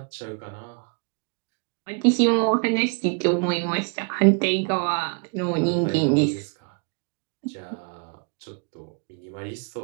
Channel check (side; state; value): left; quieter; 38.2 dB